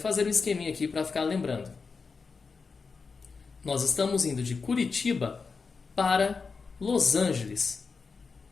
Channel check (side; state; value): right; quieter; 4.9 dB